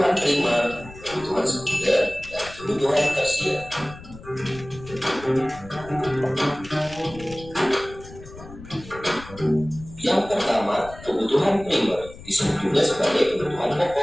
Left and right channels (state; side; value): noise; left; rumble, 17 dB below the sound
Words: primer, kebutuhan sekunder, dan kebutuhan tersier. Yang pertama, kebutuhan primer disebut juga sebagai kebutuhan